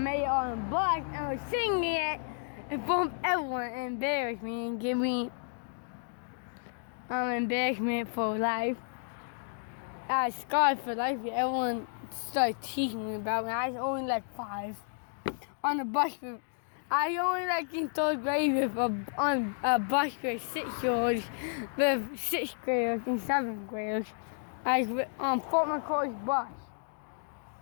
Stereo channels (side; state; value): right; silent; digital silence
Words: on the bus and I was singing it in front of everyone and embarrassed me and give me embarrassment for life. I was scarred for life. Everyone started teasing me about me. I was only like 5 on the bus. I only like in 3rd grade on a bus with 6-year-olds, with 6th graders and 7th graders. I was on Fort McCoy's bus.